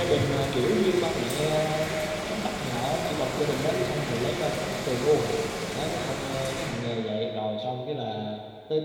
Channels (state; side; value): identical; both; correlation 1.00